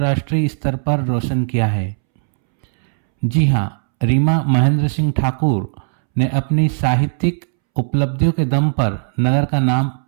स्तर पर रोशन किया है। जी हाँ, रीमा महेंद्र सिंह ठाकुर ने अपनी साहित्यिक उपलब्धियों के दम पर नगर का नाम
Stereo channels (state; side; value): silent; left; 68 dB below the other